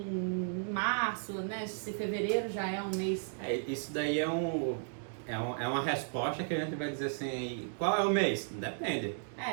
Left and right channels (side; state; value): left; silent; digital silence